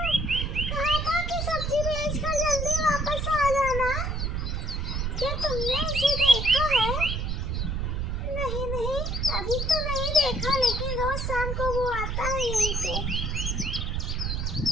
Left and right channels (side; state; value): right; noise; rumble, 1 dB below the sound